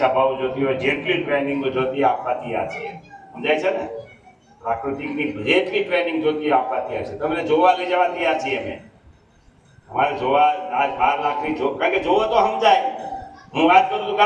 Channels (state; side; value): identical; both; correlation 1.00